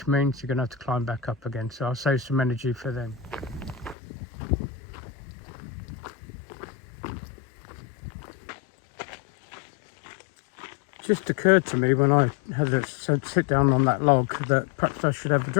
means you're going to have to climb back up again. So I'll save some energy for them. Just occurred to me when I had to sit down on that log that perhaps I should have a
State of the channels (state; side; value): drops out; right; at 4.0 s